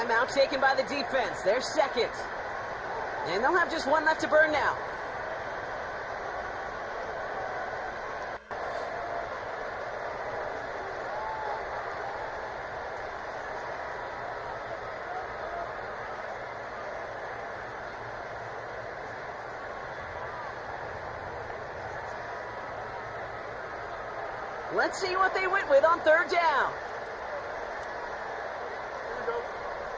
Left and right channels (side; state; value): both; identical; correlation 1.00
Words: taken by the defense. They're second. And they'll have just one left to burn now. Let's see what they went with on third down.